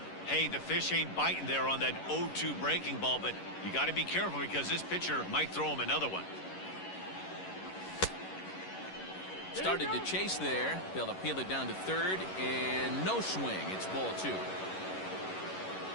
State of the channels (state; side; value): late; right; 11 ms